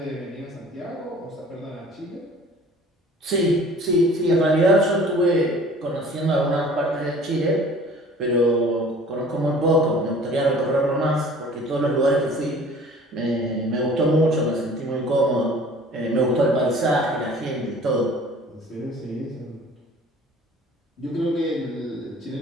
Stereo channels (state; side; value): normal; both; correlation 0.48